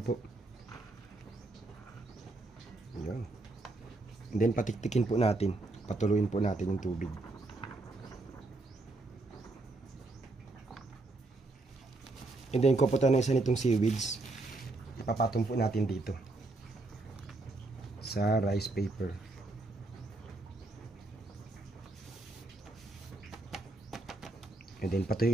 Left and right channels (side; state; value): left; quieter; 3.1 dB